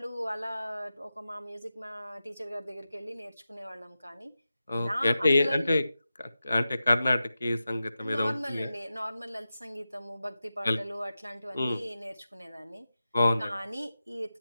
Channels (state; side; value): inverted; both; correlation -0.93